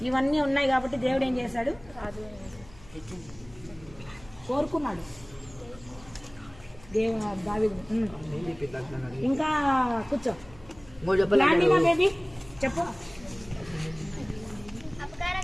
ఇవన్నీ ఉన్నాయి కాబట్టి దేవుడు ఏం చేశాడు? కోరుకున్నాడు దావీదు. ఇంకా కూర్చో. బేబీ చెప్పు.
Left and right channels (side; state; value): left; noise; hum, 22 dB below the sound